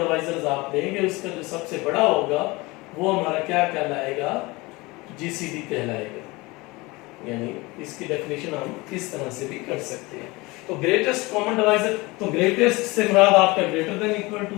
आप देंगे उसका जो सबसे बड़ा होगा वो हमारा क्या कहलाएगा, जीसीडी कहलाएगा। यानी इसकी डेफिनेशन हम इस तरह से भी कर सकते हैं। तो ग्रेटेस्ट कॉमन डिवाइजर, तो ग्रेटेस्ट से मुराद आपका ग्रेटर देन इक्वल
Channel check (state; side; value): quieter; right; 23.2 dB